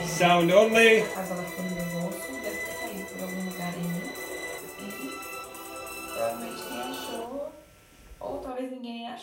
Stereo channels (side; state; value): both; identical; correlation 1.00